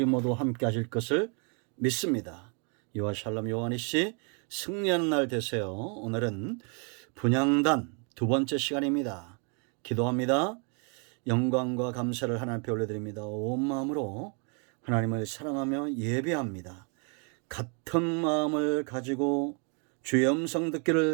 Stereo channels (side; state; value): left; quieter; 37.9 dB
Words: 모두 함께 하실 것을 믿습니다. 여호와 샬롬 요한이씨 승리하는 날 되세요. 오늘은 분향단 두 번째 시간입니다. 기도합니다. 영광과 감사를 하나님 앞에 올려드립니다. 온 마음으로 하나님을 사랑하며 예배합니다. 같은 마음을 가지고 주의 음성